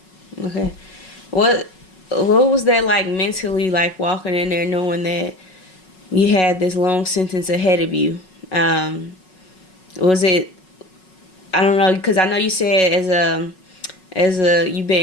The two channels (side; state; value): right; late; 5.4 ms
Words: Okay. What was that like mentally, like walking in there knowing that you had this long sentence ahead of you? Was it, I don't know, because I know you said as a you've